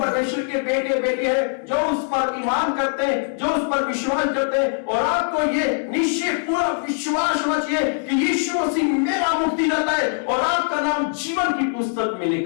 के बेटे बेटे हैं जो उस पर ईमान करते हैं, जो उस पर विश्वास करते हैं। और आपको ये निश्चय पूरा विश्वास होना चाहिए कि यीशु मसीह मेरा मुक्तिदाता है और आपका नाम जीवन की पुस्तक में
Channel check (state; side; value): silent; right; 64 dB below the other